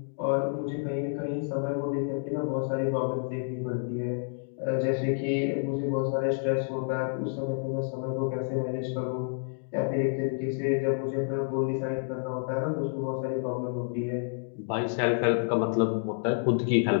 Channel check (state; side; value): silent; right; digital silence